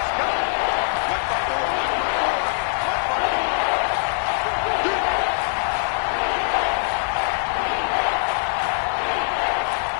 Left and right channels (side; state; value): right; silent; 64 dB below the other